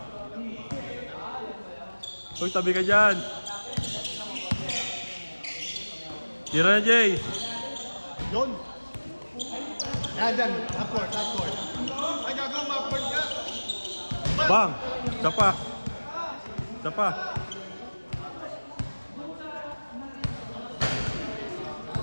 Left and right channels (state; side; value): inverted; both; correlation -1.00